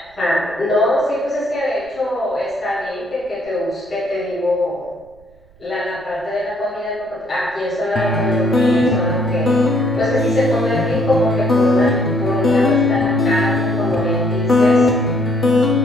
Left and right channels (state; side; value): noise; right; rumble, 30 dB below the sound